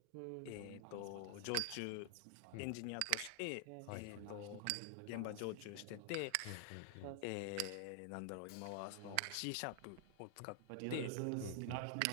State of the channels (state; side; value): different; both; correlation 0.00